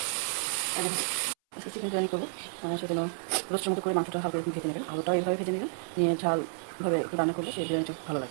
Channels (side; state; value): left; silent; 57 dB below the other